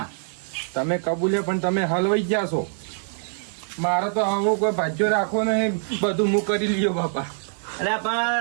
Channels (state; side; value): silent; left; digital silence